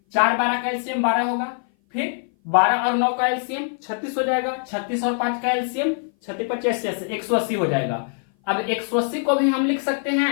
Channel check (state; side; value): silent; right; 58 dB below the other